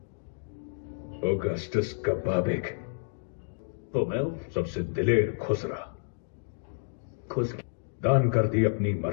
अगस्टस का बाबिक तो मैं सबसे दिलेर खुसरा, दान कर दी अपनी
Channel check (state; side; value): silent; right; digital silence